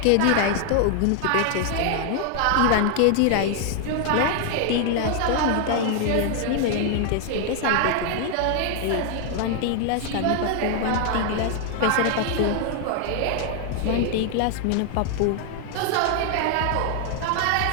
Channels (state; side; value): different; both; correlation 0.00